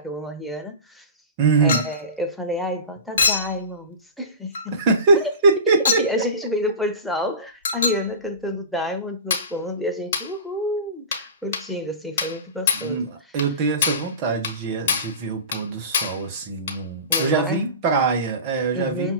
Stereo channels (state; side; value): inverted; both; correlation -0.31